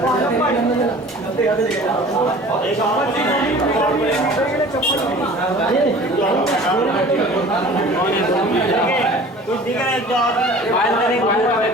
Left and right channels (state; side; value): normal; both; correlation 0.44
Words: कुछ दिख रहा है तो आप